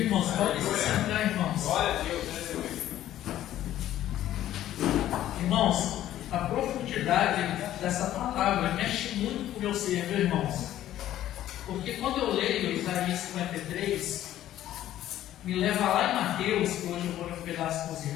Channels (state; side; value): quieter; right; 12.8 dB